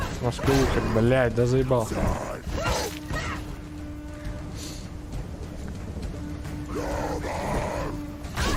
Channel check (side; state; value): both; identical; correlation 1.00